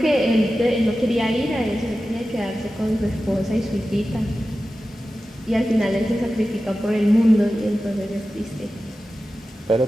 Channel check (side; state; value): both; normal; correlation 0.94